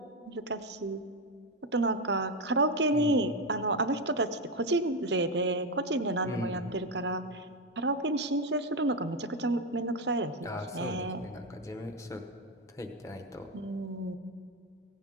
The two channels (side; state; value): both; normal; correlation 0.10